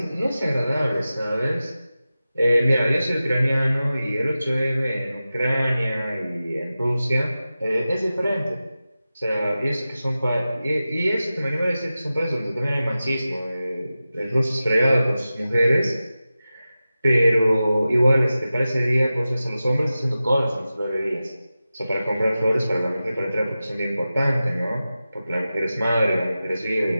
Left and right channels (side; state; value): both; inverted; correlation -0.94